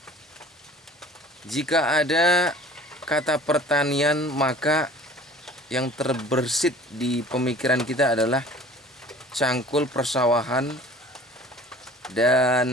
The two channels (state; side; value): normal; both; correlation 0.46